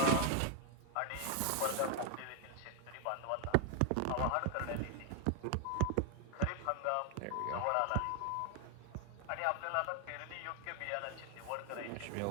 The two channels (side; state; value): both; different; correlation 0.00